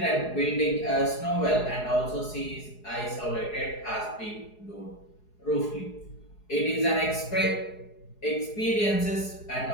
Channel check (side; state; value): right; late; 4.8 ms